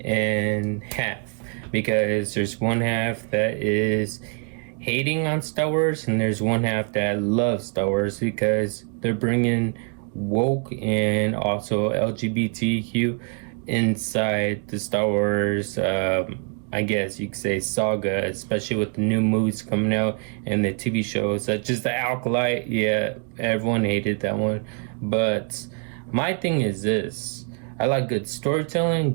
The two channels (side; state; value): left; quieter; 39.5 dB